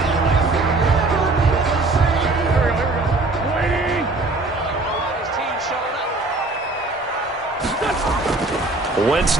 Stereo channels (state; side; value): quieter; left; 3.2 dB